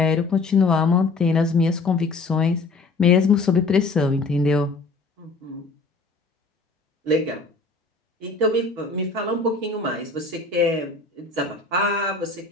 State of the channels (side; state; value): right; quieter; 3.7 dB